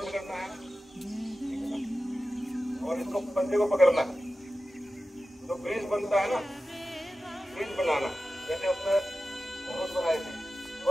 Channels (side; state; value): both; normal; correlation 0.94